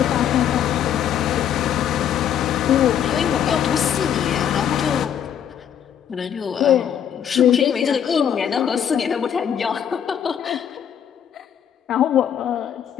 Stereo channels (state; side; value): quieter; right; 9.1 dB